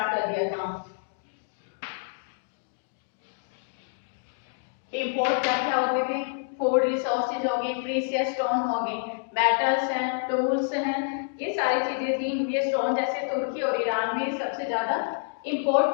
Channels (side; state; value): right; silent; digital silence